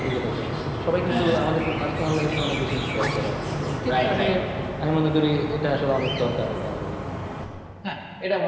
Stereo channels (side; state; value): both; identical; correlation 1.00